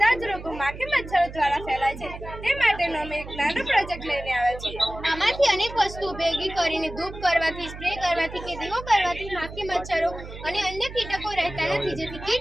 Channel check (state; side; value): noise; right; hum, 12 dB below the sound